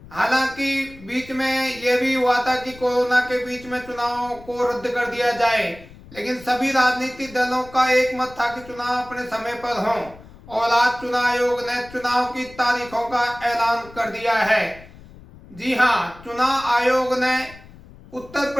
हालांकि बीच में यह भी हुआ था कि कोरोना के बीच में चुनाव को रद्द कर दिया जाए, लेकिन सभी राजनीतिक दलों का एक मत था कि चुनाव अपने समय पर हों और आज चुनाव आयोग ने चुनाव की तारीखों का ऐलान कर दिया है। जी हां, चुनाव आयोग ने उत्तर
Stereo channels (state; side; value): noise; left; rumble, 20 dB below the sound